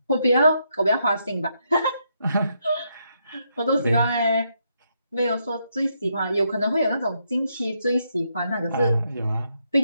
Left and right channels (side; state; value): both; inverted; correlation -0.78